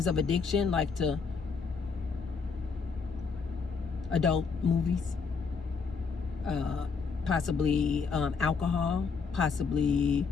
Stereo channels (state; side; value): quieter; right; 5.2 dB